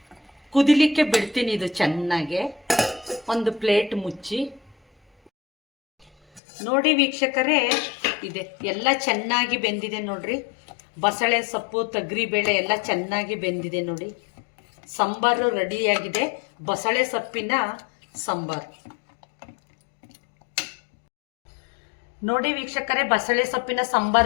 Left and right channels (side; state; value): right; drops out; at 6.4 s